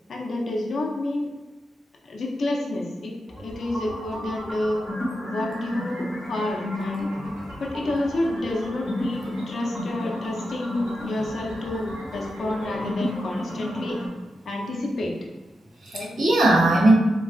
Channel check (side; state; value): both; normal; correlation 0.87